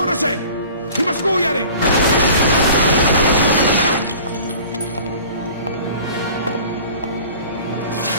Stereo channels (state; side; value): inverted; both; correlation -0.45